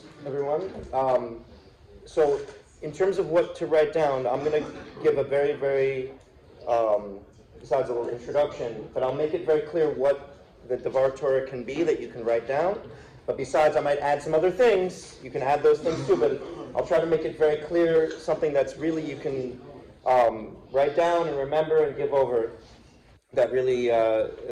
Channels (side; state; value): both; identical; correlation 1.00